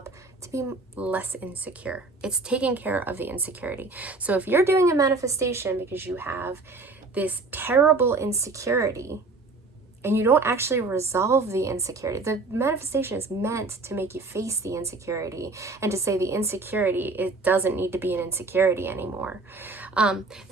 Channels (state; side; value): quieter; left; 3.7 dB